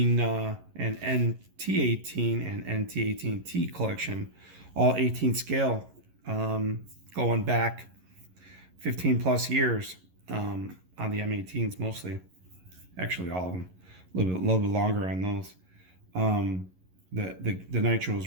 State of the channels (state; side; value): late; left; 11 ms